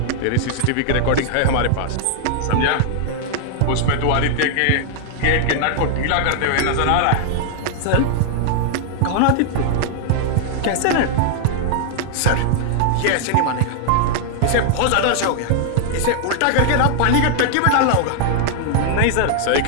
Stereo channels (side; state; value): both; different; correlation 0.00